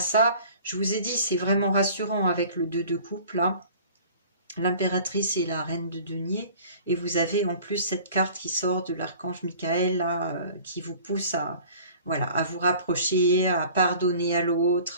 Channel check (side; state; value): both; inverted; correlation -0.47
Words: je vous ai dit, c'est vraiment rassurant avec le 2 de coupe, là. L'impératrice et la reine de denier. Et vous avez en plus cette carte qui sort de l'archange Michael, là, qui vous pousse à, voilà, à vous rapprocher, à pardonner à